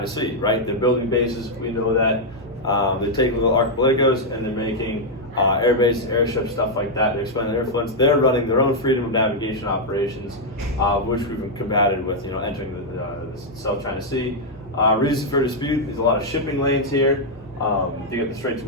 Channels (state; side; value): normal; both; correlation -0.02